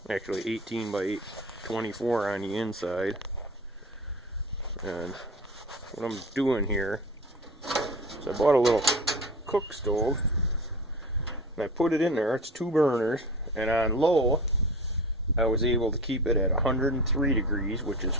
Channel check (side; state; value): both; normal; correlation 0.34